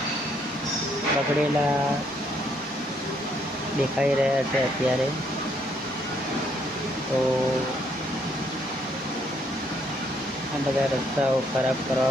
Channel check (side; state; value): both; normal; correlation 0.70